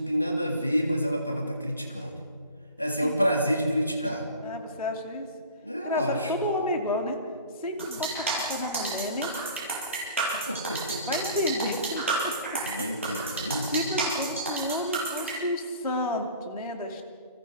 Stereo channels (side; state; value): both; inverted; correlation -0.44